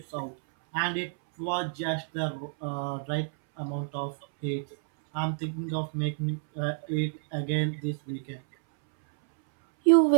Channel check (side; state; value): left; silent; 59 dB below the other